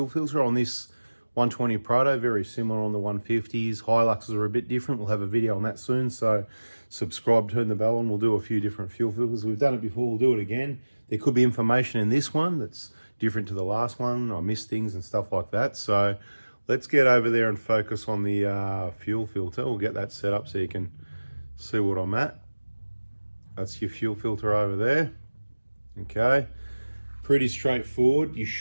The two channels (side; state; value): both; inverted; correlation -1.00